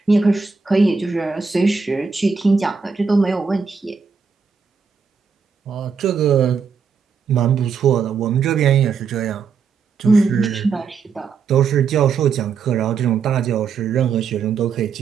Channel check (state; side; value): quieter; left; 5.6 dB